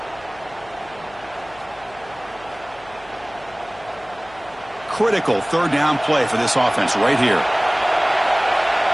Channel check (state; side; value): noise; left; hum, 23 dB below the sound